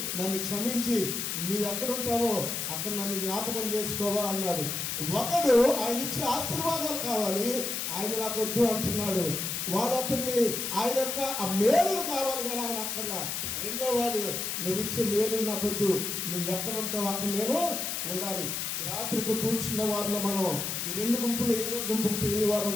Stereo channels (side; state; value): left; noise; hiss, 2 dB below the sound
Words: నన్ను క్షమించి నీవు ఎక్కడుంటావో అక్కడ నన్ను జ్ఞాపకం చేసుకోవా అన్నాడు. ఒకడు ఆయన ఇచ్చే ఆశీర్వాదాలు కావాలి, ఆయన నాకు వద్దు అంటున్నాడు. వాడు అతన్ని ఆయన యొక్క ఆ మేలులు కావాలి కానీ ఆయన అక్కర్లా. రెండో వాడు నువ్వు ఇచ్చే మేలు నాకు వద్దు, నువ్వు ఎక్కడ ఉంటావు అక్కడ నేను ఉండాలి. ఈ రాత్రి ఇక్కడ కూర్చున్న వారిలో మనం ఈ రెండు గుంపులు ఏదో గుంపుకు తెలియని వారు